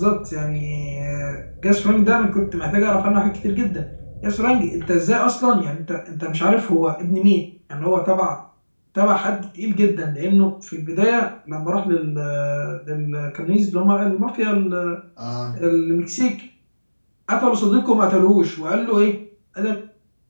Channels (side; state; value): both; inverted; correlation -1.00